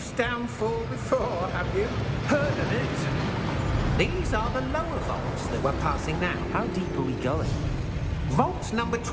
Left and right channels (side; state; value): both; identical; correlation 1.00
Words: downfall before, have you? Heard of it? These are the lower vaults that we're passing now. How deep are we going? Vault number